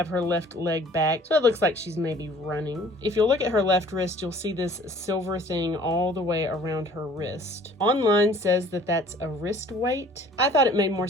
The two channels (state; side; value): normal; both; correlation 0.52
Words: her left leg back, so it looks like she's maybe running. If you'll look at her left wrist, you'll see this silver thing all the way around her wrist. Online says that that's a wrist weight. I thought it made more